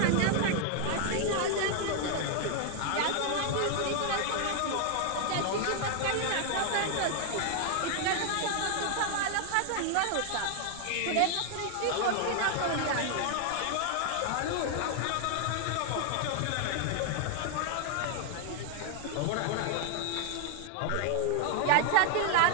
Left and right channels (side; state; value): both; different; correlation 0.00